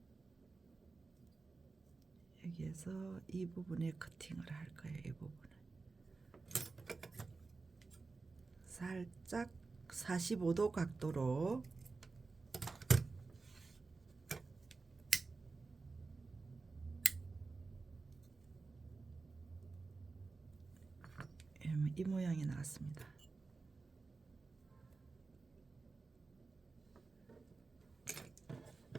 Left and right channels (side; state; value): left; quieter; 4.0 dB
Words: 여기에서 이 부분에 커팅을 할 거예요. 이 부분을 살짝 45도 각도로 이 모양이 나왔습니다.